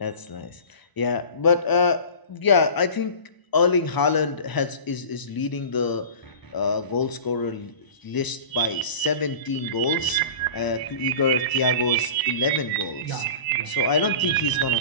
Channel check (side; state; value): right; late; 1.0 ms